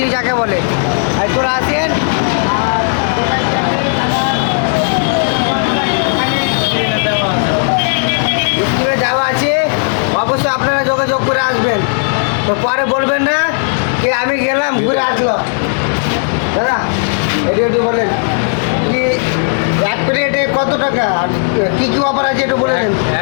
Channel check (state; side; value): silent; right; digital silence